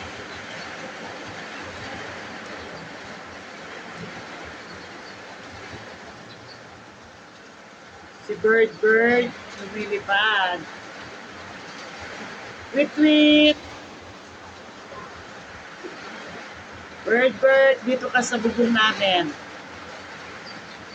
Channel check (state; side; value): identical; both; correlation 1.00